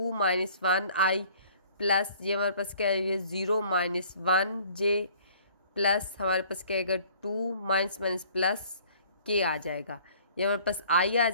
- 1i प्लस, ये हमारे पास क्या है, ये 0 - 1j प्लस हमारे पास क्या आएगा 2 प्लस k आ जाएगा, ये हमारे पास i आ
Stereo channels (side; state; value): both; inverted; correlation -0.54